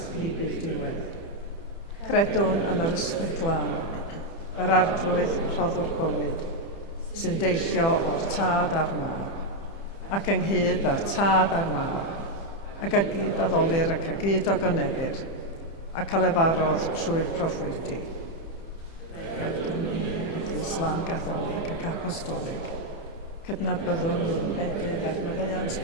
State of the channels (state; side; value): late; right; 30 ms